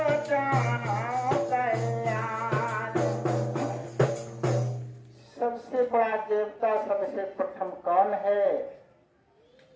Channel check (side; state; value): both; identical; correlation 1.00